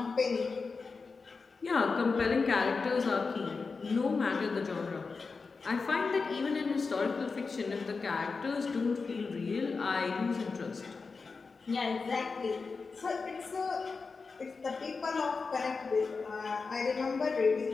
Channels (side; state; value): right; quieter; 4.5 dB